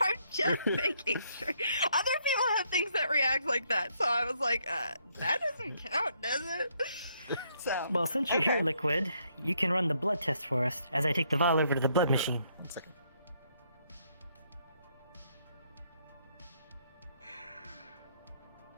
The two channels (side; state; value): both; inverted; correlation -0.72